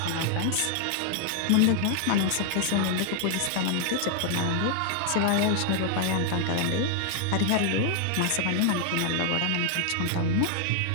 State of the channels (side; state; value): both; different; correlation 0.00